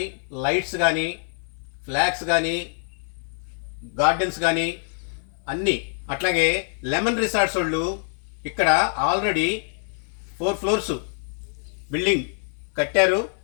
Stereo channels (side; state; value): right; silent; 59 dB below the other